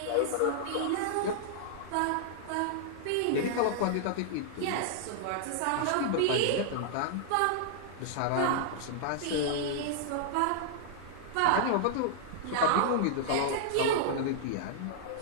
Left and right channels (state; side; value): different; both; correlation -0.01